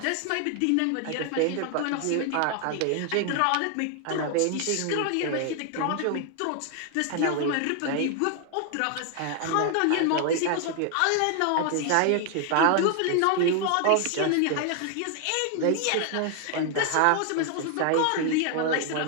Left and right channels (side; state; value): both; different; correlation 0.00